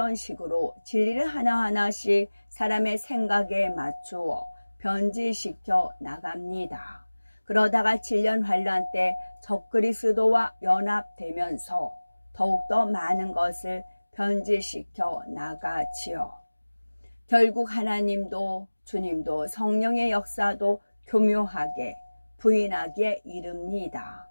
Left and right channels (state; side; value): inverted; both; correlation -1.00